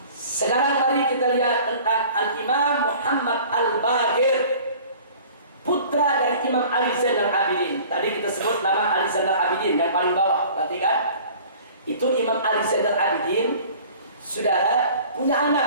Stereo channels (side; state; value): both; inverted; correlation -0.47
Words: sekarang mari kita lihat tentang Al-Imam Muhammad Al-Baqir, putra dari Imam Ali Zainal Abidin. Tadi kita sebut nama Ali Zainal Abidin yang paling bawah, perhatikan. Itu Imam Ali Zainal Abidin, saudara, punya